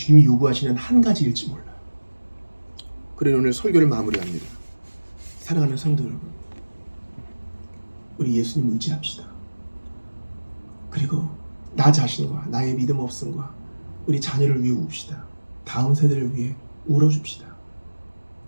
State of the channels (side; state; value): both; inverted; correlation -1.00